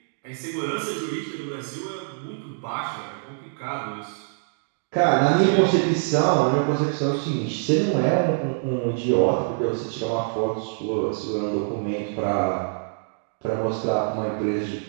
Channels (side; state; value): left; silent; digital silence